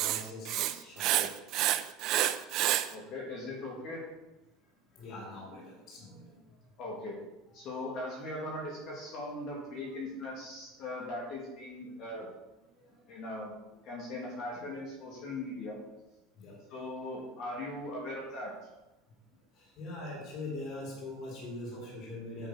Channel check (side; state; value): left; quieter; 4.9 dB